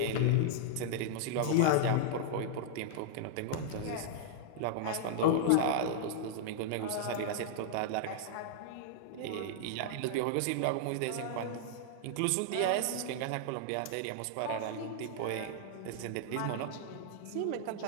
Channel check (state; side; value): different; both; correlation -0.01